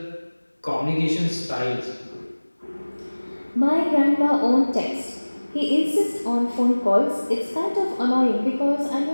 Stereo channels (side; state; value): both; inverted; correlation -1.00